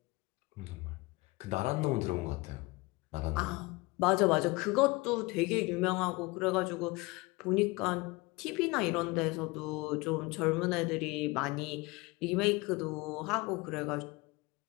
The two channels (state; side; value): quieter; right; 24.0 dB